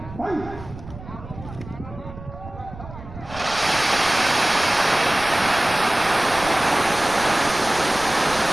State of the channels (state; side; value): noise; right; rumble, 15 dB below the sound